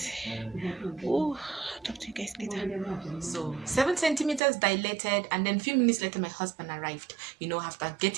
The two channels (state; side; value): drops out; left; at 4.4 s